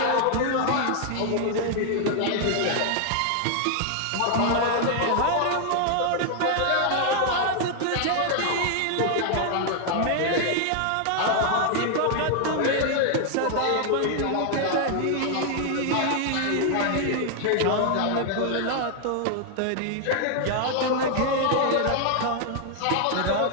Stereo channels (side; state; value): both; different; correlation 0.00